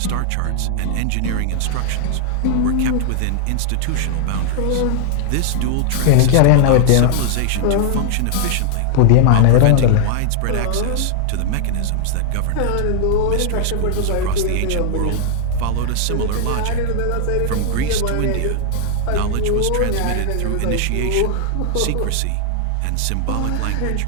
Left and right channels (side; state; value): both; different; correlation 0.00